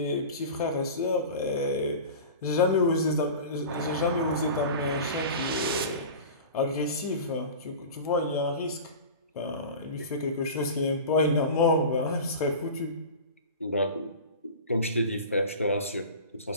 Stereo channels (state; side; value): inverted; both; correlation -0.34